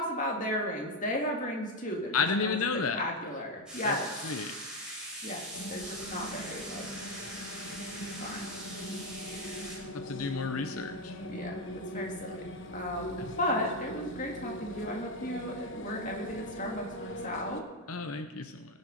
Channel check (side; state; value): both; normal; correlation 0.08